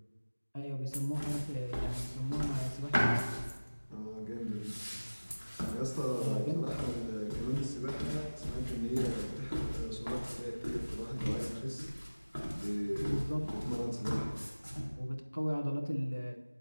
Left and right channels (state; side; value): inverted; both; correlation -1.00